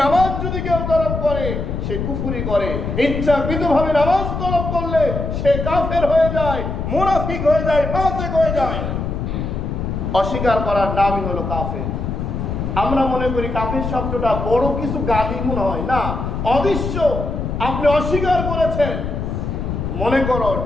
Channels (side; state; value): left; noise; rumble, 3 dB below the sound